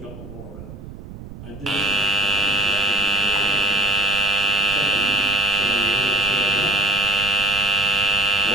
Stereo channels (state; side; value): noise; right; rumble, 14 dB below the sound